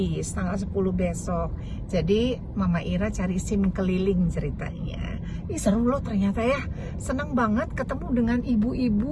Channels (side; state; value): both; identical; correlation 1.00